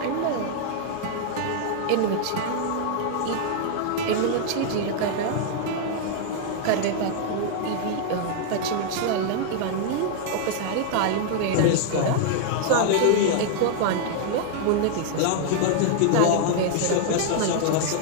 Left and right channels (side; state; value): both; different; correlation 0.00